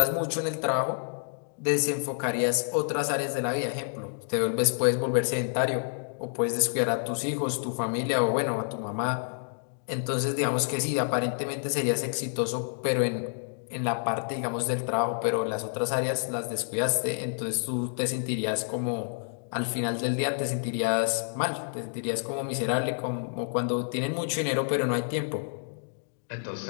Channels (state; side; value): silent; right; digital silence